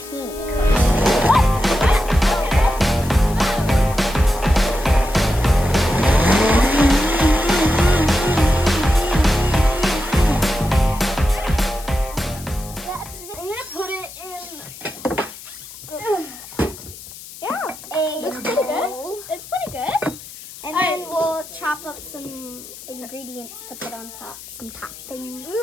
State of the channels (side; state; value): left; noise; hiss, 16 dB below the sound